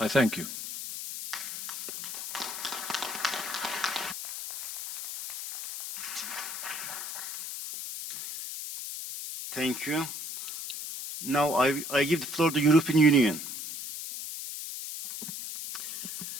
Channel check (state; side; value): noise; left; hiss, 7 dB below the sound